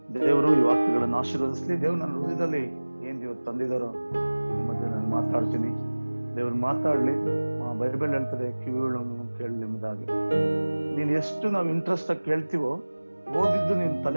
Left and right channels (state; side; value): inverted; both; correlation -1.00